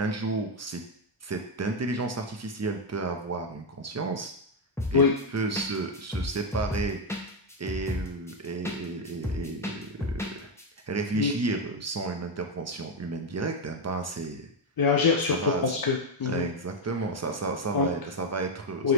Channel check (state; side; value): normal; both; correlation 0.05